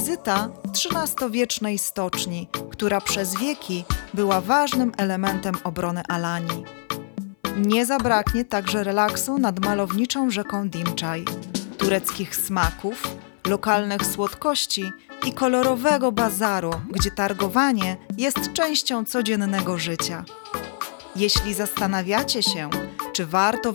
XIII-wiecznej stoczni, która przez wieki była ważnym elementem obrony Alanii. Nie zabraknie także relaksu nad malowniczą rzeką Dimczaj, tureckich smaków, lokalnych słodkości i kolorowego bazaru, gdzie targowanie jest częścią codziennego życia. Jeśli zastanawiacie się, czy warto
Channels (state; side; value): silent; right; 63 dB below the other